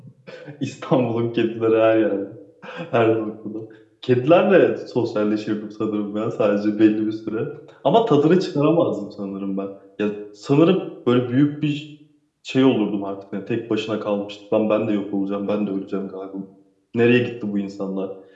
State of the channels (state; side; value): identical; both; correlation 1.00